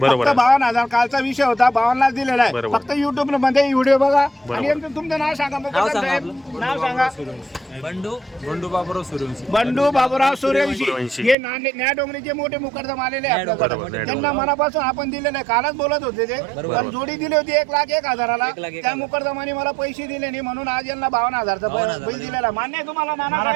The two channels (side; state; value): left; drops out; at 11.4 s